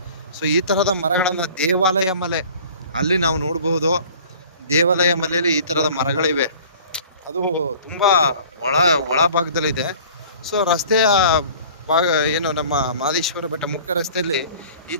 ಸೊ ಈ ಥರದ ಮರಗಳನ್ನು ದೇವಾಲಯ ಮಲೆ ಅಲ್ಲಿ ನಾವು ನೋಡ್ಬೋದು. ದೇವಾಲಯ ಮನೆಯಲ್ಲಿ ಈ ತರದ ಮರಗಳಿವೆ. ಅದು ತುಂಬಾ ಒಳ ಒಳ ಭಾಗದಲ್ಲಿದೆ. ಸೊ ರಸ್ತೆಯ ಭಾಗ ಏನು ನಮ್ಮ ಮಾದೇಶ್ವರ ಬೆಟ್ಟ ಮುಖ್ಯ ರಸ್ತೆಯಲ್ಲಿ ಈ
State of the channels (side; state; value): both; inverted; correlation -0.47